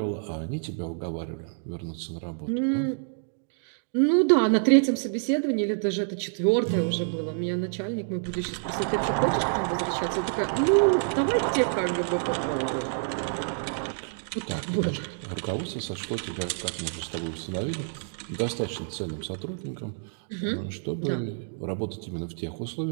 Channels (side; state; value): left; silent; digital silence